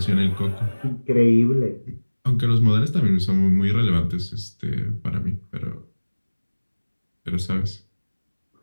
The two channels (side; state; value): both; inverted; correlation -1.00